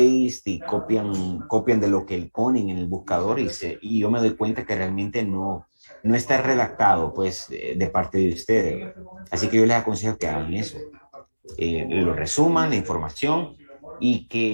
y copian de lo que ponen en el buscador y yo me doy cuenta que realmente no está redactado pues de parte de ustedes. Así que yo les aconsejo que hagan eso. Lo resuman, la información, y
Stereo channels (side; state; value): both; inverted; correlation -1.00